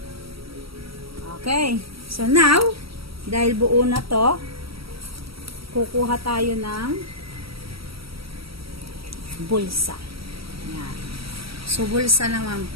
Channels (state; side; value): late; left; 0.75 ms